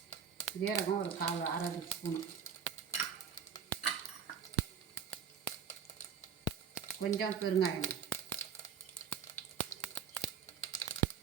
ஒரு 1/2 ஸ்பூன், கொஞ்சம் பெருங்காயம்,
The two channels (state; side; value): quieter; left; 7.3 dB